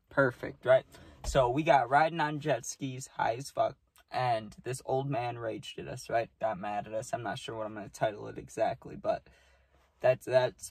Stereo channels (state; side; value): identical; both; correlation 1.00